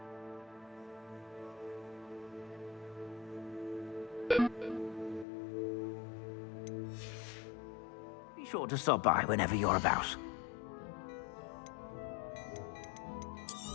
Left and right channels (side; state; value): right; drops out; at 5.2 s